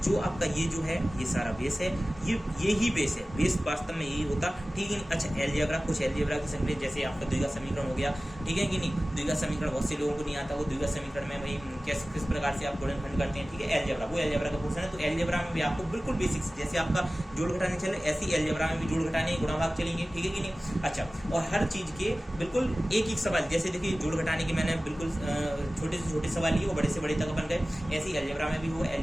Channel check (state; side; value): normal; both; correlation 0.97